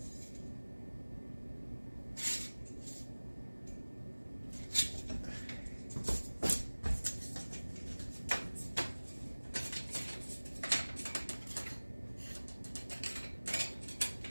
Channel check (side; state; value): both; inverted; correlation -1.00